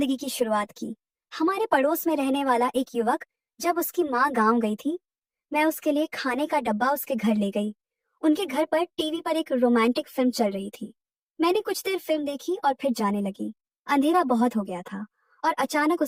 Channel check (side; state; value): both; identical; correlation 1.00